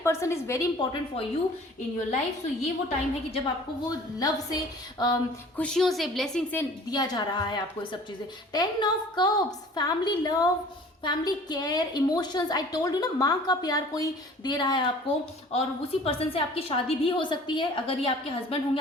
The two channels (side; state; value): both; normal; correlation 0.48